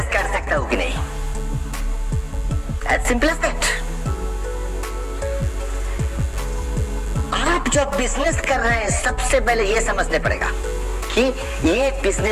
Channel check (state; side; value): identical; both; correlation 1.00